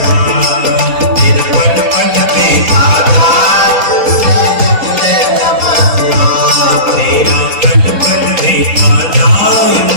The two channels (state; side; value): late; left; 4.1 ms